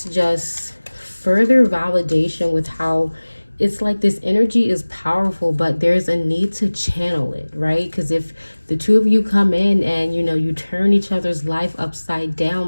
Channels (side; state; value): both; inverted; correlation -1.00